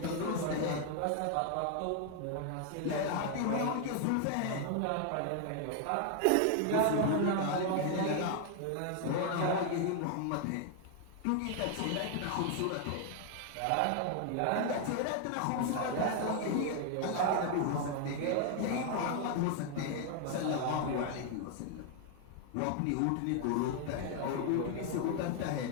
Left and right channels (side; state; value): both; different; correlation 0.00